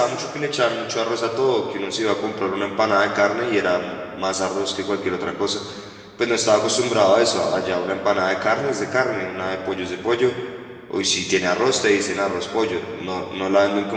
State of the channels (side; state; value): both; identical; correlation 1.00